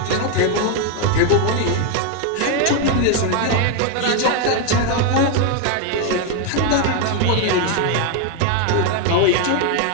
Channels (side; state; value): both; different; correlation 0.01